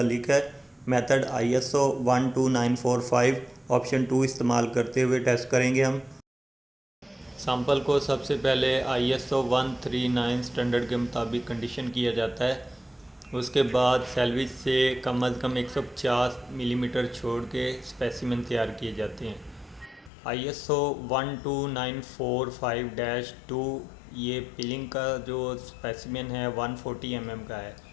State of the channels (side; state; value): right; drops out; at 20.1 s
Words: है। मेथड ISO 12945 ऑप्शन 2 इस्तेमाल करते हुए टेस्ट करेंगे हम। सैंपल को सबसे पहले ISO 139 स्टैंडर्ड के मुताबिक कंडीशन किया जाता है। उसके बाद सैलविज से कम अज़ कम 150 मिलीमीटर छोड़ के स्पेसिमेन तैयार किए जाते हैं। ISO 12945-2 ये पिलिंग का जो स्पेसिमेन है 140 mm का है।